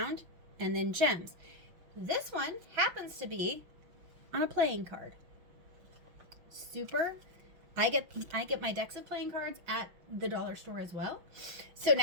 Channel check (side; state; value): left; late; 5.9 ms